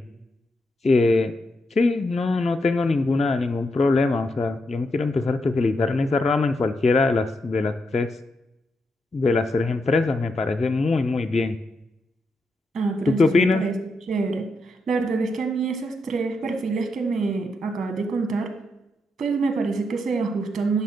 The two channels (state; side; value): normal; both; correlation 0.82